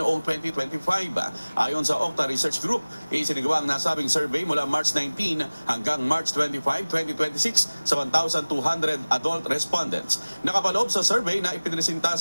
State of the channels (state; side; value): inverted; both; correlation -1.00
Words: 2025. Ayon sa Okta Research Group, isinagawa ang nasabing survey mula March 19 hanggang March 25, 2026 sa 1,200 adult respondents. Nakapaloob sa survey na ipinresinta